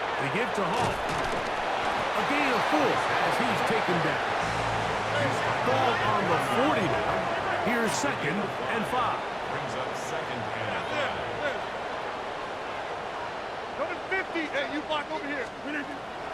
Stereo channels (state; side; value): identical; both; correlation 1.00